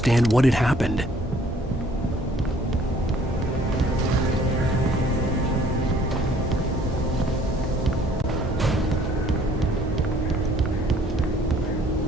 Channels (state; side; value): normal; both; correlation 0.59